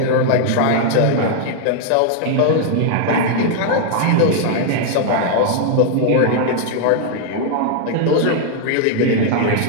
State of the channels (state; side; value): different; both; correlation 0.00